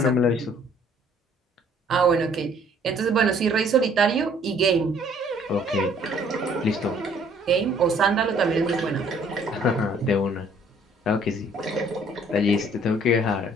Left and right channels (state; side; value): normal; both; correlation 0.59